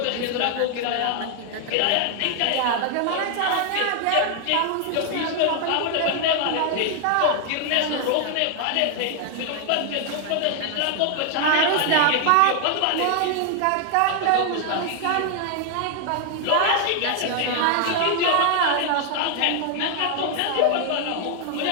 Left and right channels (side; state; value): both; different; correlation 0.00